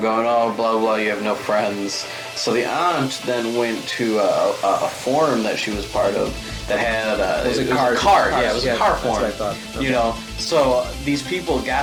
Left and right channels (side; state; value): both; identical; correlation 1.00